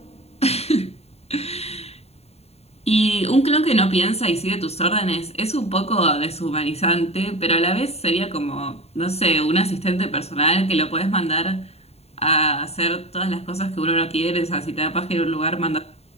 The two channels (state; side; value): late; right; 0.30 ms